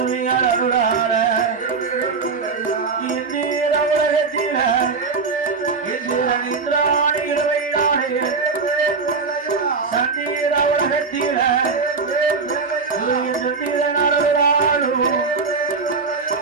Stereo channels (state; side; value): quieter; left; 4.7 dB